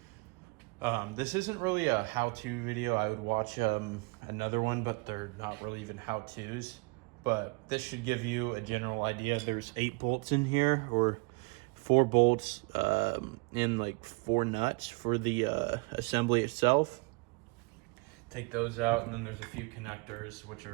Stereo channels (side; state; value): left; quieter; 29.0 dB